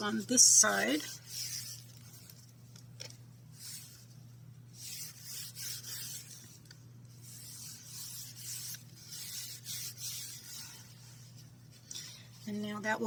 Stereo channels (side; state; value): both; identical; correlation 1.00